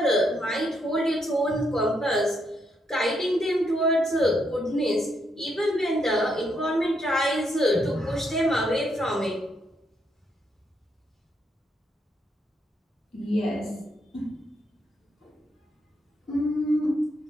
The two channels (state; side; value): normal; both; correlation 0.77